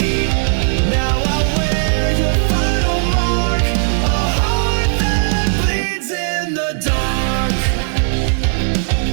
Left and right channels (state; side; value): silent; left; digital silence